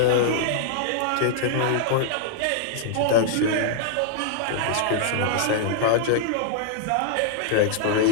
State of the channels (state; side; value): different; both; correlation -0.01